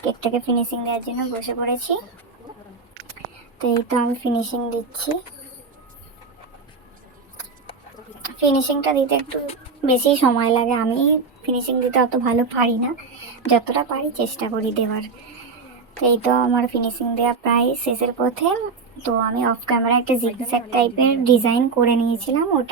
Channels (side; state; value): left; quieter; 4.6 dB